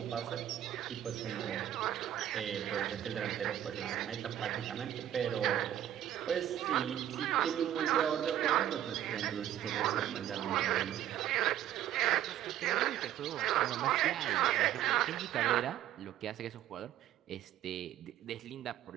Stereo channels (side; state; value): left; quieter; 11.7 dB